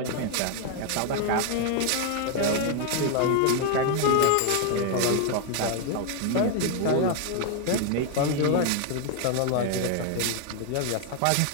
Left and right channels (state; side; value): different; both; correlation 0.01